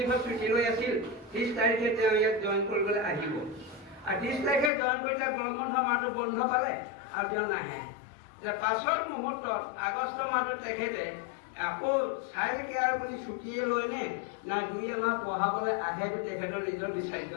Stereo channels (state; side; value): drops out; right; at 4.7 s